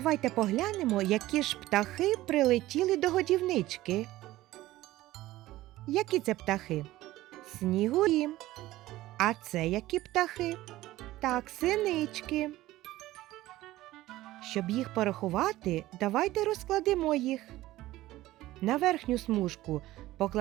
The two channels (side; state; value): left; quieter; 16.5 dB